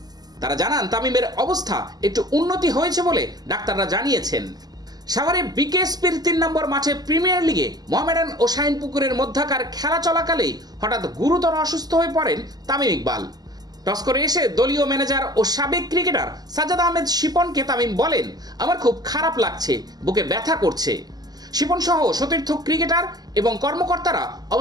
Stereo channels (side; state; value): left; late; 0.19 ms